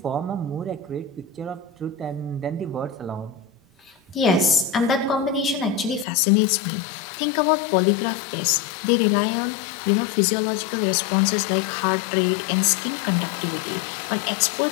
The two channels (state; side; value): drops out; right; at 6.1 s